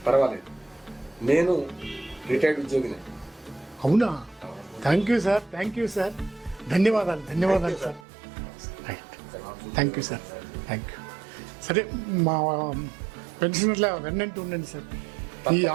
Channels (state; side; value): drops out; left; at 8.1 s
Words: పర్వాలేదు, నేను రిటైర్డ్ ఉద్యోగినే. అవునా? Thank you sir. ధన్యవాదాలు sir. Right. Thank you sir. Thank you. సరే మా పెన్షనర్ల వెన్నంటూ ఉండండి సార్. ఈ